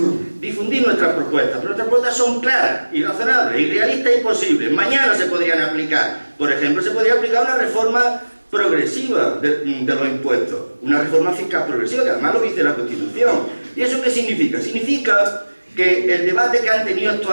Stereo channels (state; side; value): inverted; both; correlation -1.00